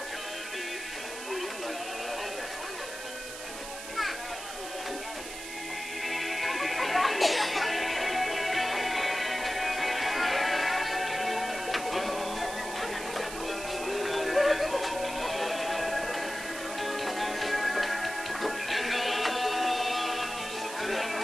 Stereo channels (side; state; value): right; noise; hiss, 10 dB below the sound